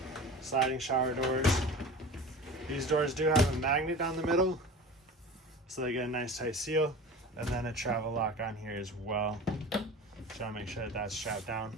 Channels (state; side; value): normal; both; correlation 0.36